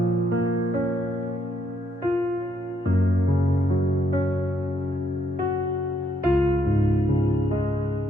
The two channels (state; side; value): normal; both; correlation 0.73